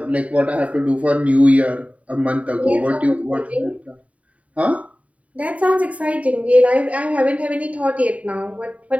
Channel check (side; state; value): left; late; 0.067 ms